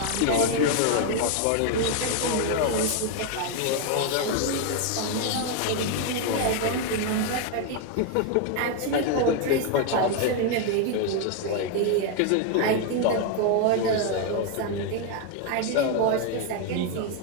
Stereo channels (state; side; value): different; both; correlation 0.01